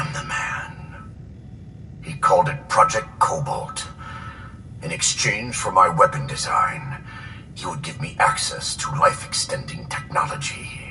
the man. He called it Project Cobalt. In exchange for my weapon design, he would give me access to life-extending technology.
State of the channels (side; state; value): both; identical; correlation 1.00